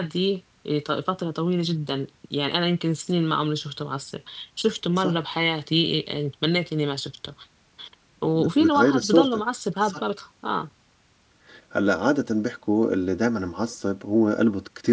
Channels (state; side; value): identical; both; correlation 1.00